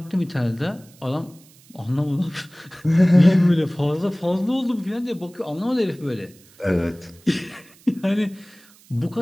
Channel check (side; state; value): right; noise; hiss, 27 dB below the sound